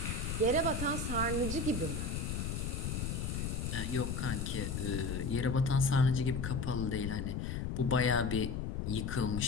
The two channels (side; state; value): left; noise; rumble, 2 dB below the sound